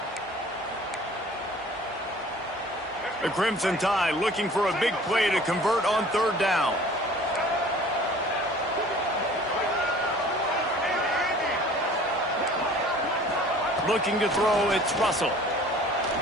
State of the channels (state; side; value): normal; both; correlation 0.48